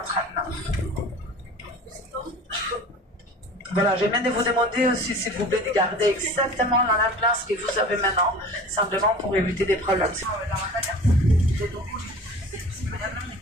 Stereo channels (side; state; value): both; normal; correlation 0.40